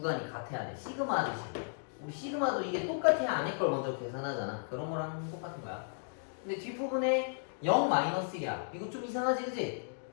같아야 돼. 시그마 하듯이. 우리 시그마도 이게 똑같아야 안에 걸 먼저 계산하잖아. 그런 거랑 똑같은 거야. 근데 뒷부분에 0-1이야. 이거 좀 이상하지, 그지?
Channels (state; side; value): silent; right; digital silence